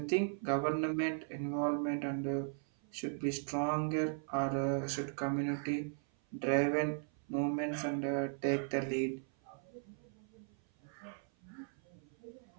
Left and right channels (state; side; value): silent; left; 53 dB below the other